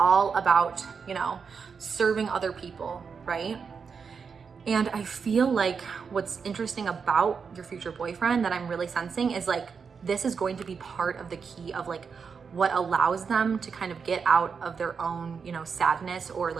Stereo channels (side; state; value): left; quieter; 5.8 dB